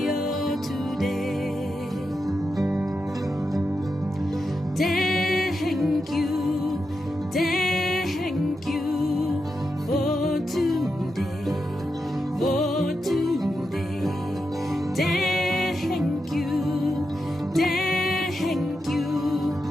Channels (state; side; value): normal; both; correlation 0.87